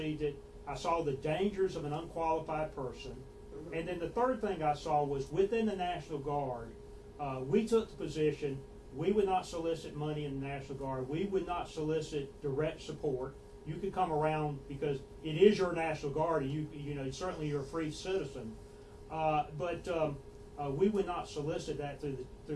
it. I saw the dangers of an unqualified person. And then the third thing I saw was within the National Guard, we took the position we would not solicit money in the National Guard. We would not solicit direct support. You could come around because it is your National Guard, and you know certainly you're a free citizen. But we would not solicit that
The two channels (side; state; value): both; identical; correlation 1.00